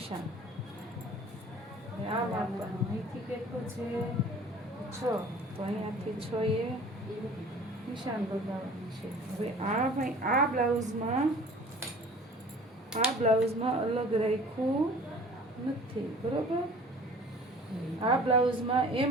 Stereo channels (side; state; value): both; normal; correlation 0.47